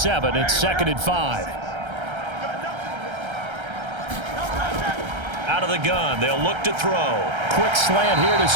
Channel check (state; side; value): late; left; 1.3 ms